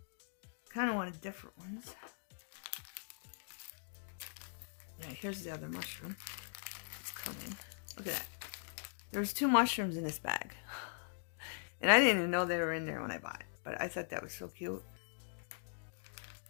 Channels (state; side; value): silent; right; digital silence